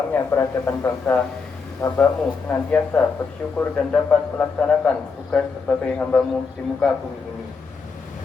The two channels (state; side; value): quieter; right; 4.9 dB